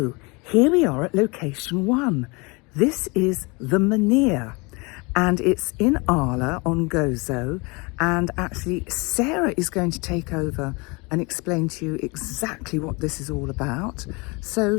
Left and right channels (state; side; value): quieter; right; 27.8 dB